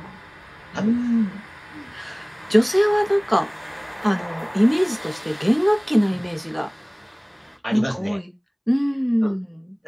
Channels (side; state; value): both; identical; correlation 1.00